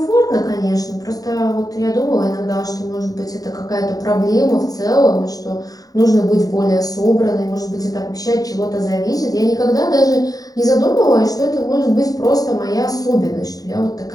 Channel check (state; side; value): late; right; 0.18 ms